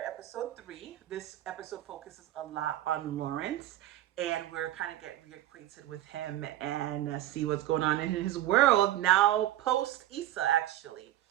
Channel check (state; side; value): quieter; left; 13.7 dB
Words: episode 3. This episode focuses a lot on Lawrence, and we're kind of get reacquainted with him and see what's going on in his world now post Issa actually.